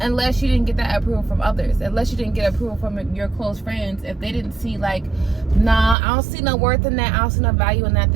unless you didn't get that approval from others, unless you didn't get approval from your close friends. If they didn't see like, nah, I don't see no worth in that, I don't see no value in that,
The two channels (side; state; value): left; drops out; at 6.0 s